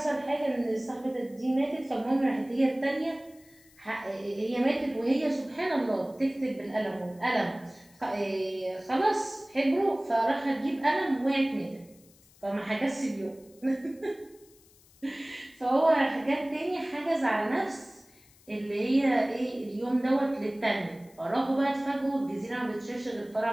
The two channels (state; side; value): noise; left; hiss, 28 dB below the sound